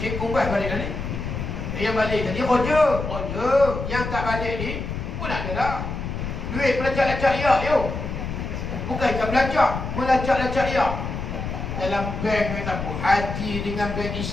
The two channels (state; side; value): noise; left; rumble, 5 dB below the sound